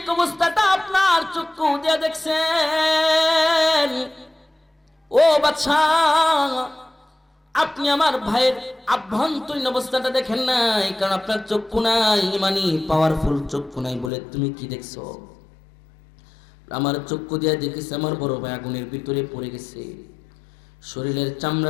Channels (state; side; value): drops out; right; at 14.1 s